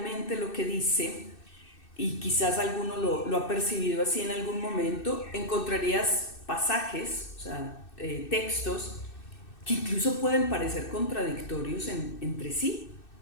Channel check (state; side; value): late; right; 2.6 ms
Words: lo que dice, y quizás alguno lo ha percibido así en algún momento, encontrarías pasajes, o sea, textos que incluso pueden parecer contradictorios entre sí.